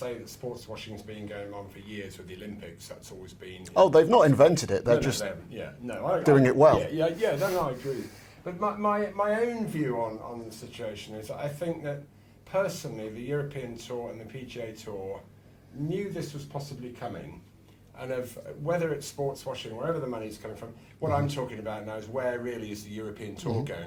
that sports washing's been going on for years with the Olympics. That's always been. Oh, they've not invented it. They're just doing it well. No, I agree. But my own view on the situation is I think that personally the European Tour and the PGA Tour knew this was possibly coming. And of whether it's sports washing, wherever the money's coming from, what I'm talking about now is where really is the European Tour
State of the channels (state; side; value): identical; both; correlation 1.00